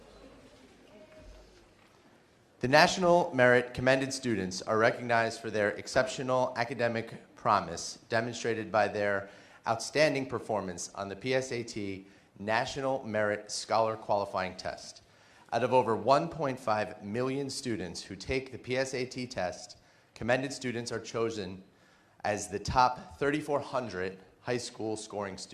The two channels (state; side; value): identical; both; correlation 1.00